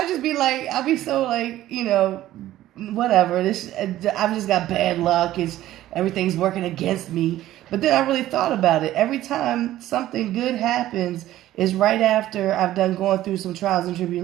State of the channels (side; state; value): left; quieter; 14.2 dB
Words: just be like, I'll be so like, whatever. I've just got bad luck. Everything's working against me. But then I really thought about it. Every time something good happens is right after I've done going through some trials and